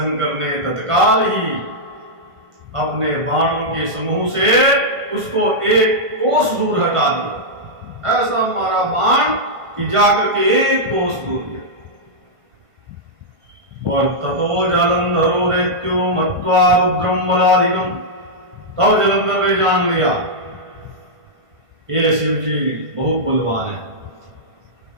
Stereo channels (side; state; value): left; late; 1.5 ms